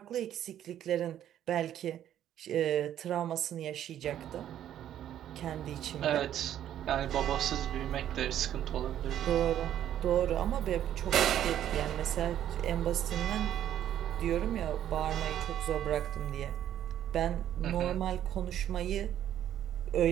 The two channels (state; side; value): quieter; left; 11.0 dB